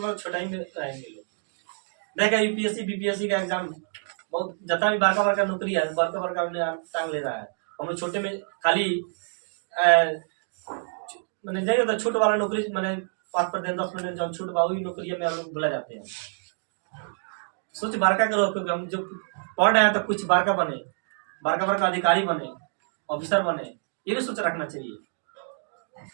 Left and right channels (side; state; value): left; silent; 60 dB below the other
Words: छोटा ही में रहेंगे लोग। देखा UPSC BPSC का एग्जाम बहुत जितना भी बारका का नौकरी है, बड़का टांग ले रहा है। हम लोग छोटे में खाली मैंने जाएगा तो छोट वाला नौकरी मैंने 5% 10% जब छूट बा वही नौकरी में हम लोग भुला जाते हैं। सोच बारका करो, क्योंकि हम जो पढ़ रहे हैं तो कुछ बारका बने, बारका अधिकारी बने, ऑफिसर बने, ये भी सोच रखना चाहिए।